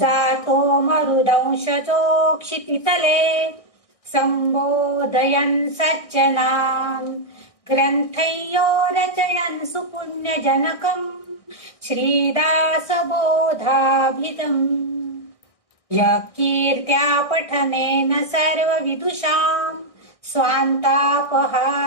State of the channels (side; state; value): right; late; 1.6 ms